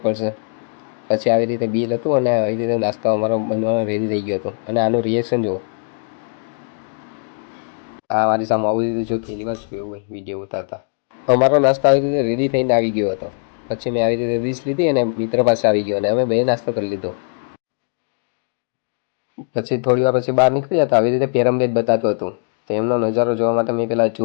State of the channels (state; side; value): silent; right; digital silence